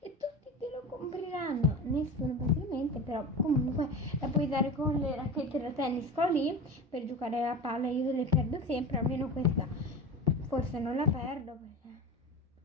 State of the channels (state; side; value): normal; both; correlation 0.29